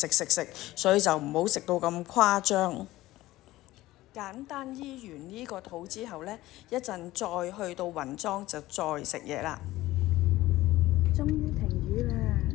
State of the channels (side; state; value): right; quieter; 17.0 dB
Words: 所以就唔好食到咁誇張。簡單醫完呢個肚之後呢，一陣再去到雲莊就再食嘢啦。終於停雨啦！